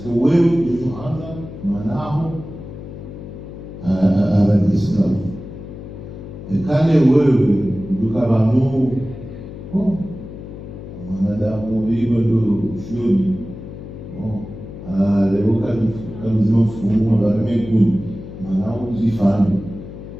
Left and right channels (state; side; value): noise; left; hum, 12 dB below the sound